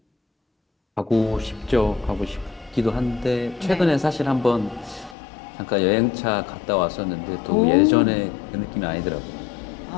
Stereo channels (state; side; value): drops out; right; at 5.2 s